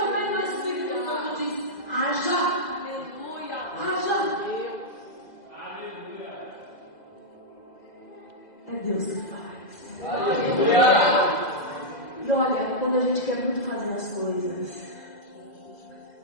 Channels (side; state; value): right; late; 1.9 ms